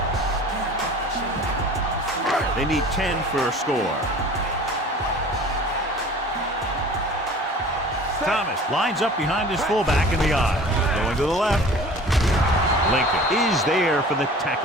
They need 10 for a score. Thomas lines up behind his fullback in the I. Going to the left. Lincoln is there for the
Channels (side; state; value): both; normal; correlation 0.44